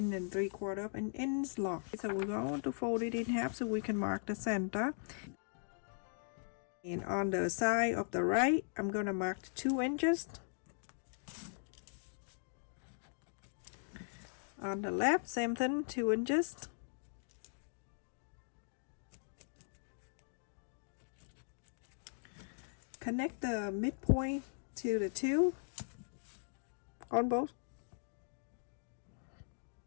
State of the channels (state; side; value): silent; right; digital silence